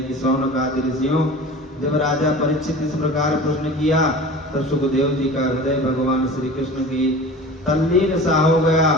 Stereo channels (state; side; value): normal; both; correlation 0.38